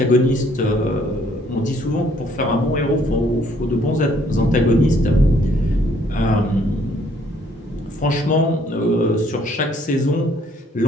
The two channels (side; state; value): both; normal; correlation 0.64